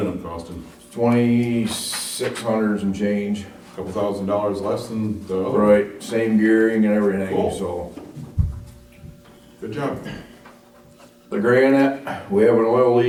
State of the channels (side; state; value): both; identical; correlation 1.00